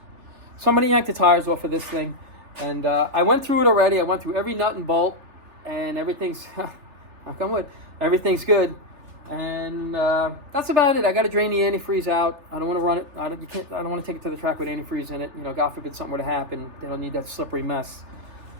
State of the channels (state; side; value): late; left; 3.4 ms